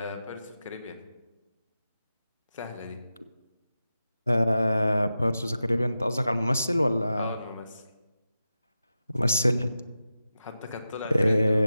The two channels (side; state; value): both; inverted; correlation -0.91